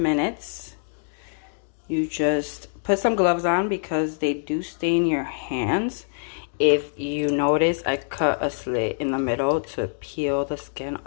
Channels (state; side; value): silent; right; digital silence